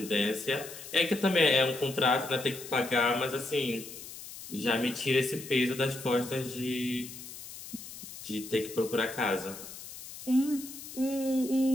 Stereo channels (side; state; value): left; noise; hiss, 13 dB below the sound